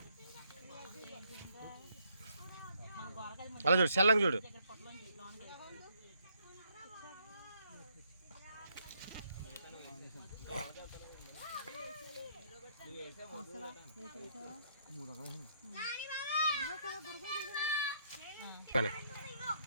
అలా చూడు చల్లంగా చూడు.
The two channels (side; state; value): both; inverted; correlation -0.71